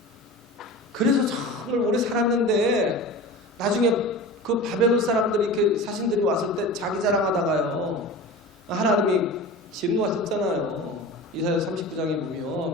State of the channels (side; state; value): both; normal; correlation 0.34